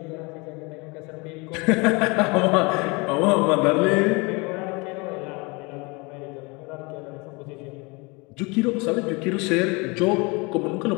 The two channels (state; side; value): quieter; right; 27.7 dB